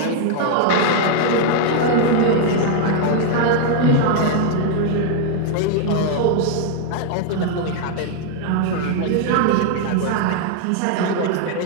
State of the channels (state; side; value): different; both; correlation 0.00